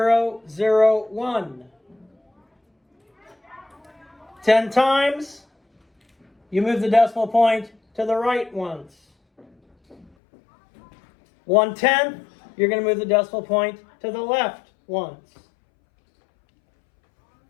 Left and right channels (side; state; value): right; drops out; at 10.1 s